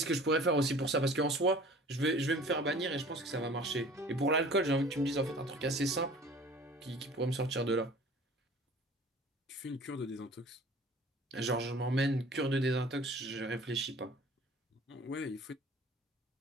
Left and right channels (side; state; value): both; normal; correlation 0.46